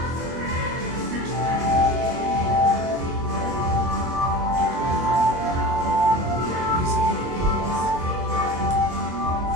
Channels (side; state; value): left; late; 24 ms